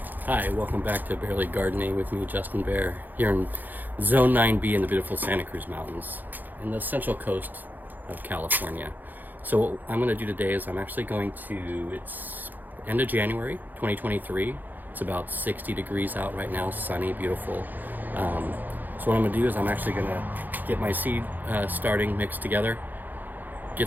Hi, welcome back to Barely Gardening with me, Justin Bear, here in Zone 9B in the beautiful Santa Cruz Mountains in the central coast of California. So what I'm going to do today is I'm actually going to, it's end of January 2023. It's about 60 degrees out right now, sunny, beautiful. So what I'm going to do is I'm actually going to get my seed starting mixed together,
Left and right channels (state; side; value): late; left; 0.086 ms